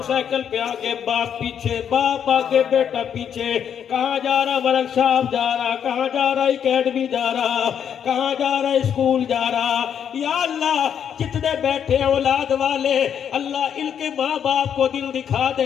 سائیکل پہ آگے باپ پیچھے، باپ آگے بیٹا پیچھے، کہاں جا رہا ورک شاپ جا رہا، کہاں جا رہا اکیڈمی جا رہا، کہاں جا رہا اسکول جا رہا۔ یا اللہ جتنے بیٹھے اولاد والے، اللہ ان کے ماں باپ کو دل دکھا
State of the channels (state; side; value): quieter; right; 8.5 dB